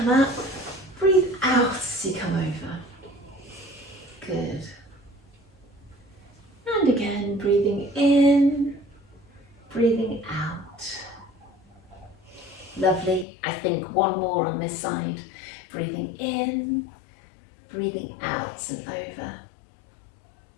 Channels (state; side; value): drops out; right; at 13.2 s